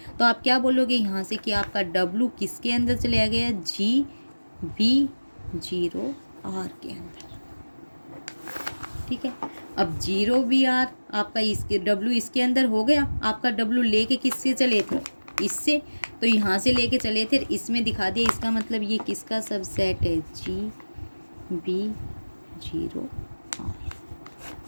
तो आप क्या बोलोगे यहाँ से कि आपका डब्लू किसके अंदर चले गया, जी बी जीरो आर के अंदर, ठीक है। अब 0 BR आपका इसके W इसके अंदर हो गया, आपका W लेके किससे चले थे, इससे, तो यहाँ से लेके चले थे, इसमें दिखा दिया, इसका मतलब ये किसका सबसेट है, GB0R।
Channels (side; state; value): both; inverted; correlation -1.00